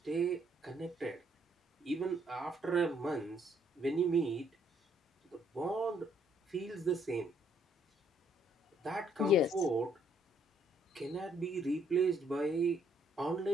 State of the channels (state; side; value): normal; both; correlation 0.68